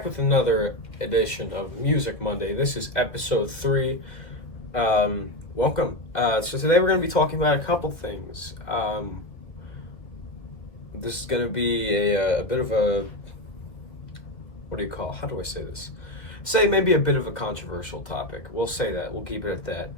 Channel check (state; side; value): late; right; 1.9 ms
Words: with another edition of Music Monday. This is episode 3. Welcome. So today we're going to be talking about a couple things. This is going to be a bit of a, how do I say this? Say maybe a bit of a controversial topic. We'll say that. We'll keep it at that.